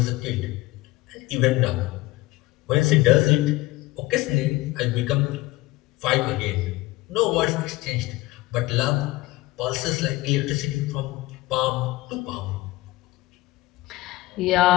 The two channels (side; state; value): right; quieter; 19.4 dB